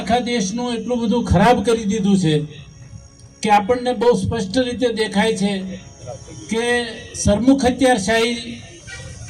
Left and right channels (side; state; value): both; identical; correlation 1.00